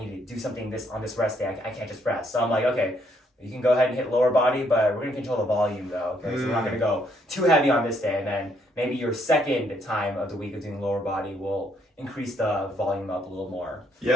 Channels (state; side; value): normal; both; correlation 0.71